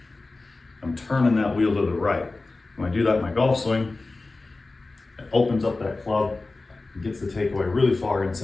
I'm turning that wheel to the right. When I do that in my golf swing, it opens up that club and gets the takeaway really far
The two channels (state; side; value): quieter; right; 3.4 dB